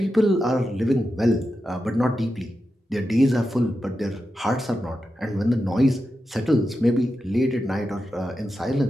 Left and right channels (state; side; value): normal; both; correlation 0.89